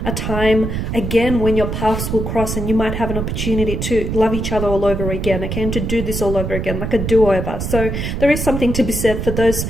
a time again when your paths will cross and you might have an opportunity to love each other all over again, okay, and to do this all over again, like a do-over. So there is something to be said for those,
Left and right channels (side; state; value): right; noise; rumble, 3 dB below the sound